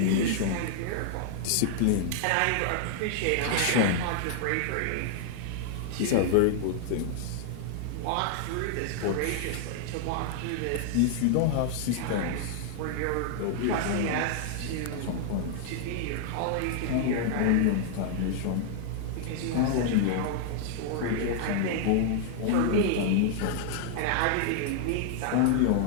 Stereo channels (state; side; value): different; both; correlation 0.00